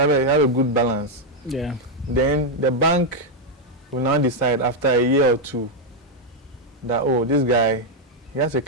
a good balance. Yeah. Then the bank will now decide after a year or two that, oh, this guy, he has a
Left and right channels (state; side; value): normal; both; correlation 0.01